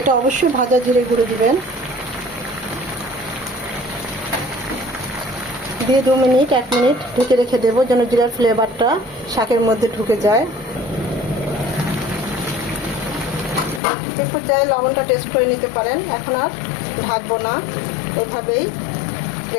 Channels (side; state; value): right; drops out; at 13.8 s